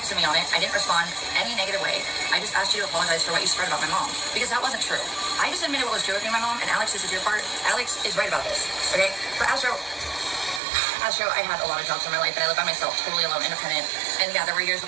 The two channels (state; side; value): drops out; left; at 10.6 s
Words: me on it. I didn't respond any negative way. I just asked you to apologize for what you spread about my mom, because that wasn't true. I just admitted what was true with me and my mom, and Alex, this is your part. Alex is right about this, okay? But Astro, I had a lot of jobs in my life, and I live by myself, totally alone, independent. And yeah, there were years when